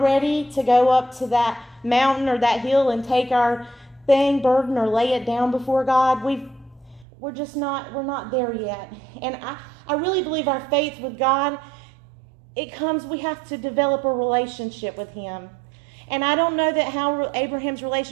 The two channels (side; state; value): left; drops out; at 7.1 s